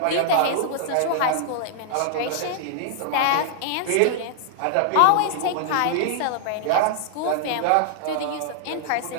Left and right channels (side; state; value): both; different; correlation -0.01